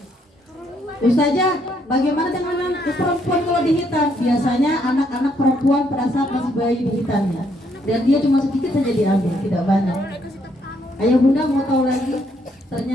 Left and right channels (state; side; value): normal; both; correlation 0.72